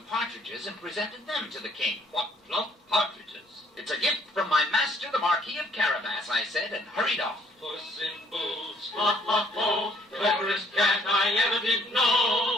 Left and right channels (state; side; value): normal; both; correlation 0.63